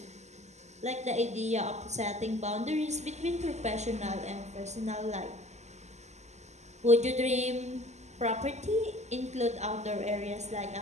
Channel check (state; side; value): late; left; 0.33 ms